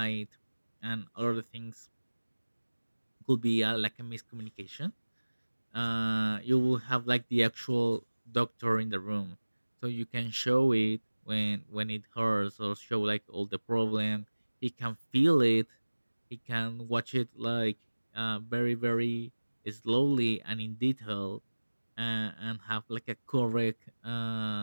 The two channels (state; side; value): inverted; both; correlation -1.00